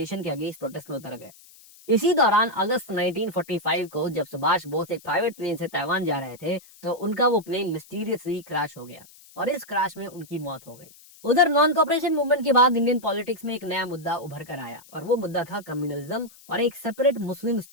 के अगेंस्ट प्रोटेस्ट में उतर गए। इसी दौरान अगस्त 1945 को जब सुभाष बोस एक प्राइवेट प्लेन से ताइवान जा रहे थे तो उनका वो प्लेन मिस्टीरियसली क्रैश हो गया और इस क्रैश में उनकी मौत हो गई। उधर नॉन कॉपरेशन मूवमेंट के बाद इंडियन पॉलिटिक्स में एक नया मुद्दा उभर कर आया और वो मुद्दा था कम्युनलिज्म और एक सेपरेट मुस्लिम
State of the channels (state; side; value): noise; left; hiss, 23 dB below the sound